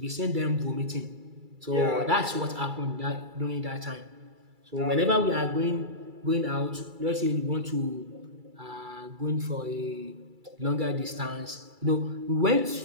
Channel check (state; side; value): late; left; 2.3 ms